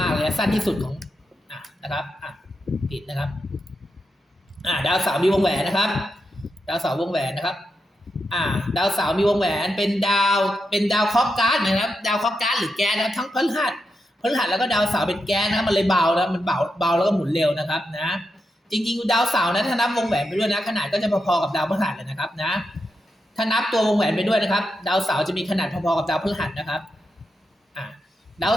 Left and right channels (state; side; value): normal; both; correlation 0.86